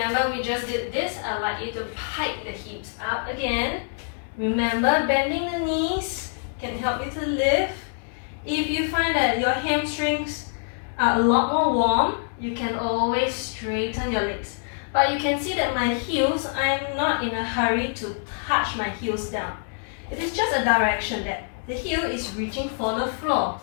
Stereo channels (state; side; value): silent; right; 62 dB below the other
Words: we just did this. I'd like you to pike the hips up again. Remember, bending the knees can help you to lift. If you find that your hamstrings are a lot more warm, you can always straighten your legs. But you can see that my heels, I am not in a hurry to touch my heels down. It is just a direction that the heel is reaching for the floor.